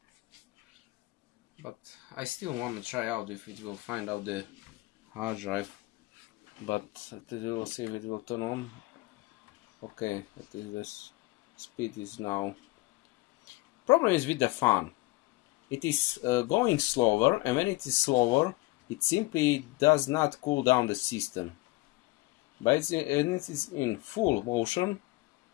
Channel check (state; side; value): quieter; right; 21.6 dB